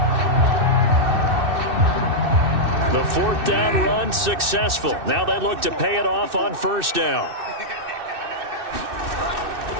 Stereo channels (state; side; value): late; left; 2.6 ms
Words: The 4th down run successful. Now they look to pay it off on first down.